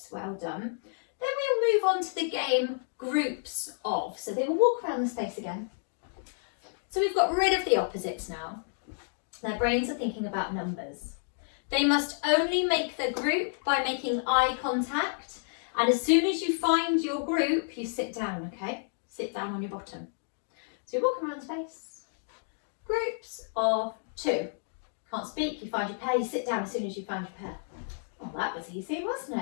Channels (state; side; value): silent; right; digital silence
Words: well done. Then we'll move on to the game groups of. So they will walk around the space again. So we've got rid of the opposites now. Their brains are thinking about numbers. They must only make the group by making eye contact. And as soon as you find your group, you sit down, okay? Sit down on your bottom. So you walk around the space. Groups of 2. Can't speak, you find your pair, you sit down as soon as you find your pair. Oh, that was easy, wasn't